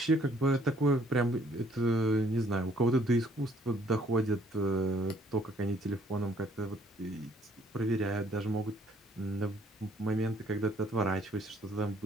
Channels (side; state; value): both; normal; correlation 0.62